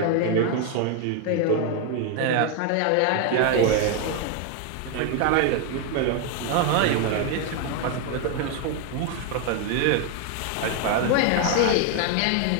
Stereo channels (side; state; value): both; different; correlation 0.01